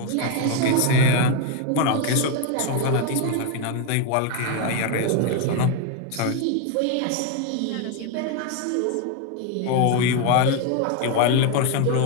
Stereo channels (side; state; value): both; different; correlation 0.01